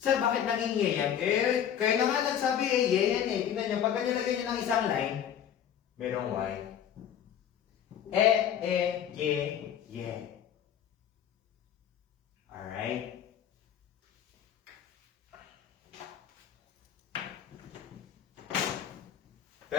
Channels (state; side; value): quieter; right; 9.5 dB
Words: Sir, bakit naging ye yan? Eh, kayo na nga nagsabi eh, ye yan eh. Tingnan nyo, pagka nilagay nyo ng isang line, merong y. Ye, ye. Alright?